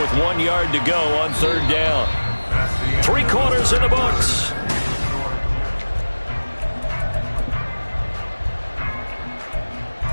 1 yard to go on 3rd down. 3 quarters in the books.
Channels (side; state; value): both; inverted; correlation -1.00